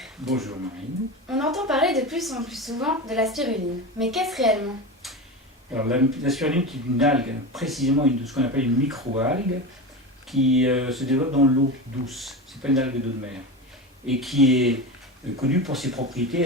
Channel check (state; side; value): normal; both; correlation 0.24